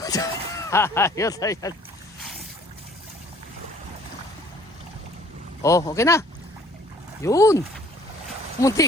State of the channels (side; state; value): both; normal; correlation 0.56